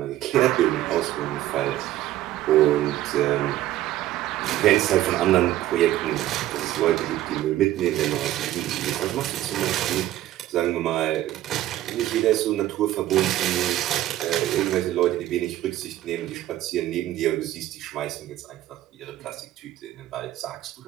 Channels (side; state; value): left; quieter; 14.0 dB